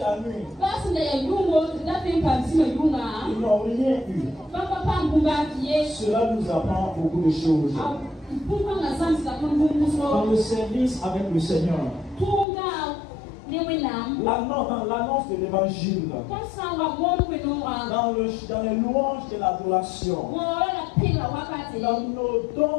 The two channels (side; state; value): right; drops out; at 12.5 s